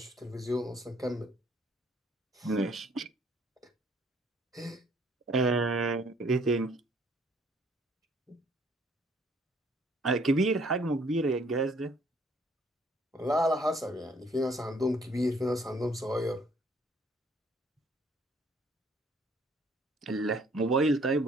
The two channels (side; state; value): both; normal; correlation 0.62